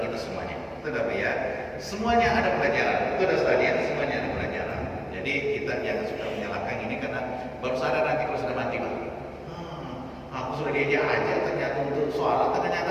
kita semuanya. Betul apa ya? Semuanya ada pelajaran. Betul ada sekalian, semuanya ada pelajaran. Jadi kita jangan suka menyalahkan ini karena baru sadar nanti kalau sudah mati, Pak. Aku sudah diajak aja ternyata untuk sholat,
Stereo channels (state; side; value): identical; both; correlation 1.00